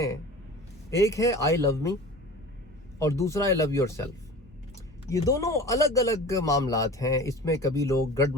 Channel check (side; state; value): both; normal; correlation 0.38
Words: ایک ہے آئی لو می اور دوسرا ہے لو یور سیلف۔ یہ دونوں الگ الگ معاملات ہیں، اس میں کبھی لوگ